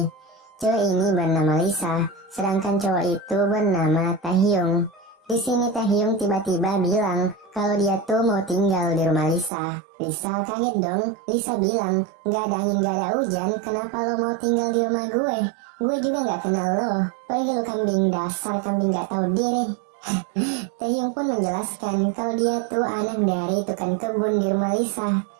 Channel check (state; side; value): drops out; left; at 9.5 s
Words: Cewek ini bernama Lisa, sedangkan cowok itu bernama Taehyung. Di sini Taehyung tiba-tiba bilang kalau dia tuh mau tinggal di rumah Lisa. Lisa kaget dong. Lisa bilang, gak ada angin gak ada hujan, kenapa lo mau tinggal di rumah gue? Gue juga gak kenal lo. Pergi lo kambing, dasar kambing gak tahu diri. Taehyung pun menjelaskan kalau dia tuh anak dari tukang kebun di rumah Lisa.